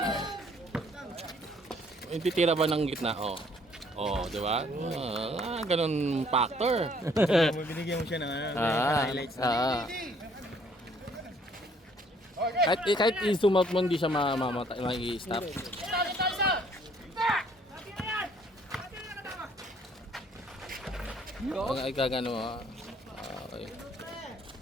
Yung titira ba ng gitna? Di ba? Ganun factor. Binigyan mo siya ng highlights. Kahit i-zoom out mo, hindi siya ma-i-stop. Pag ikagano, okay.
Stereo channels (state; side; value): normal; both; correlation 0.62